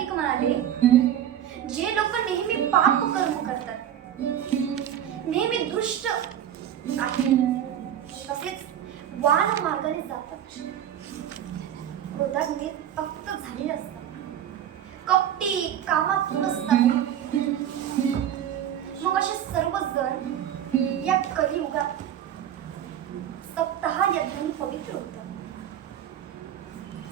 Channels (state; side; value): quieter; left; 10.3 dB